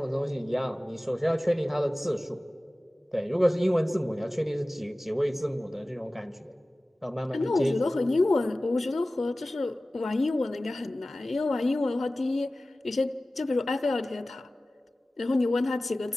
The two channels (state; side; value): normal; both; correlation 0.97